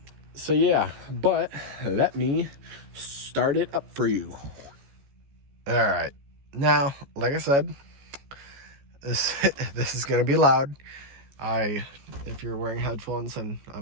yeah, but let me start it up for you. All right. Now, like I said, this is going to be loud. If you're wearing headphones, and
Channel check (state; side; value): late; left; 14 ms